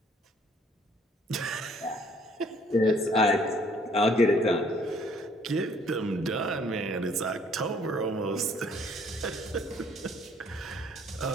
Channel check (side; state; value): both; normal; correlation 0.61